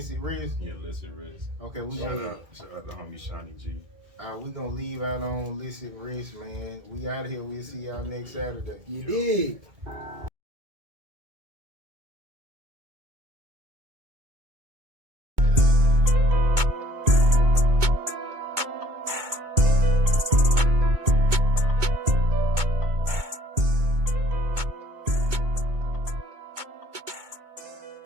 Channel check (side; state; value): left; late; 2.2 ms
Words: risk? Yeah, listen, Riz. Okay, we Shout gonna out to homie Shawnee G. we gonna leave out on illicit risk, man. We out of here. We'll see y'all next Saturday. You did.